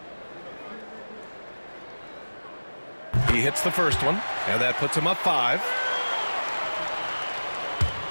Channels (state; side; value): inverted; both; correlation -1.00